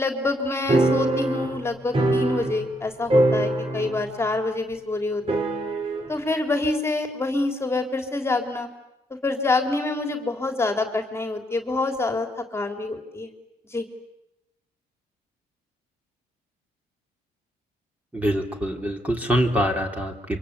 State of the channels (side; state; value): both; normal; correlation 0.75